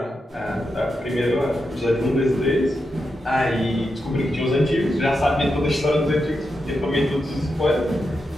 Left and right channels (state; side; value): normal; both; correlation 0.87